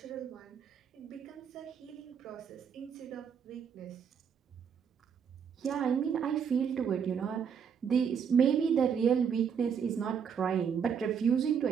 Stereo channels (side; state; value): left; quieter; 7.2 dB